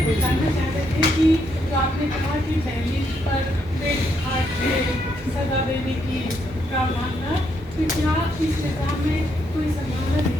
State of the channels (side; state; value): both; normal; correlation 0.76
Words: जानना चाहते थे कि जो आपने कहा कि दहलीज पर पेट काट के सजा देने की का मामला, तो क्या इस निजाम में कोई संभावना